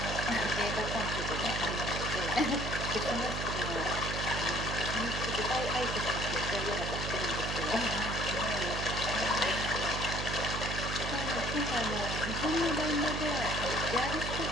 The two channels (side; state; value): right; noise; hum, 4 dB below the sound